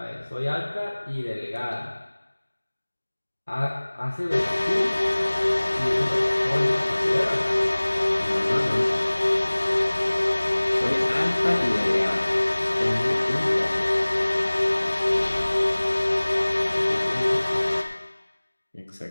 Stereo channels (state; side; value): inverted; both; correlation -1.00